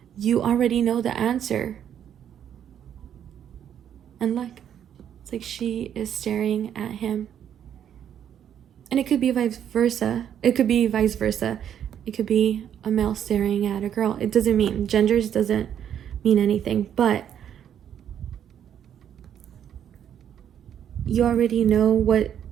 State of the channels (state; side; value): quieter; left; 9.4 dB